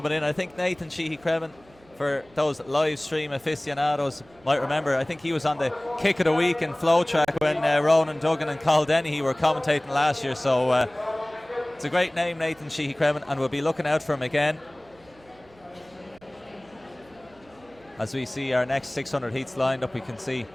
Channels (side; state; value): right; noise; hum, 28 dB below the sound